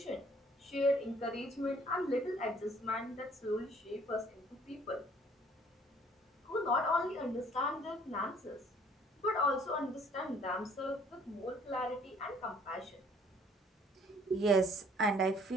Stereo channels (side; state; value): both; normal; correlation 0.58